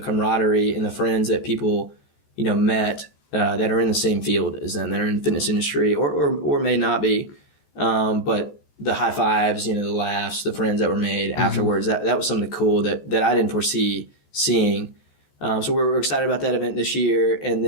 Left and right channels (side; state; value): right; late; 14 ms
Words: and the friends that people met that are in the same field as them, that are in the fitness industry, or may not be, but the high fives, the laughs, the friends that were made afterwards, that was something cool that I didn't foresee seeing. So we're excited about that event this year. And